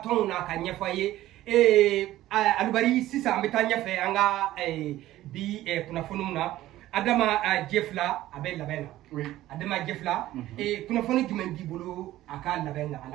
là, qu'a nyefoye. Et Alubari, si ça m'est fait, anga bi kuna fununa. Adama Jeffla, Abel Labena. Oui. Adama Jeffla. Et kuna funu du même bibolo, Akal Labena,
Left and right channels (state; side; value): quieter; left; 14.9 dB